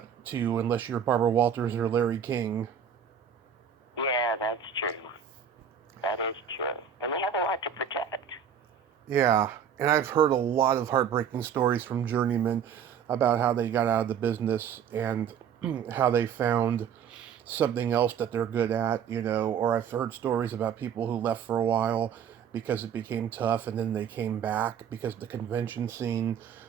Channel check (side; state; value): left; quieter; 7.9 dB